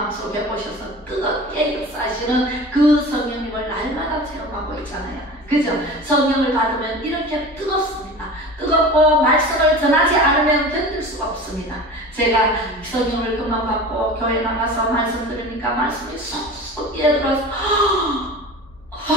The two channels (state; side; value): noise; left; hum, 28 dB below the sound